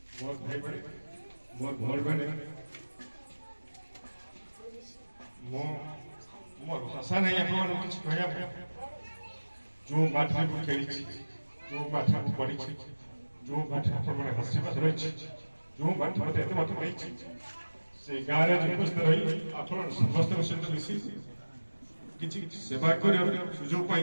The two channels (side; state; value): both; inverted; correlation -1.00